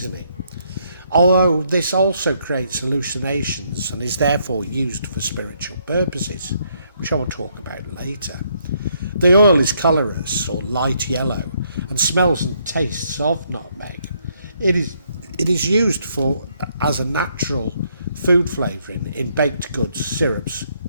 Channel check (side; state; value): both; inverted; correlation -0.72